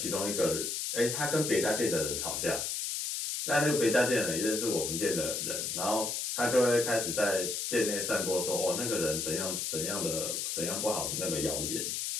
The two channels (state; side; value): noise; left; hiss, 2 dB below the sound